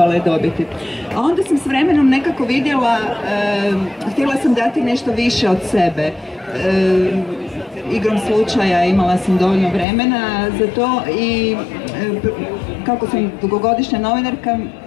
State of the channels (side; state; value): right; drops out; at 9.9 s